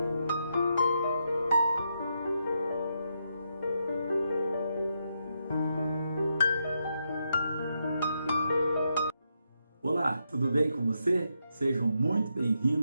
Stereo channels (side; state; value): both; inverted; correlation -0.82